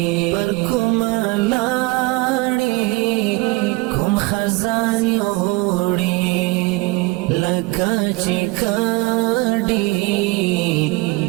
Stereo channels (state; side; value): quieter; left; 23.8 dB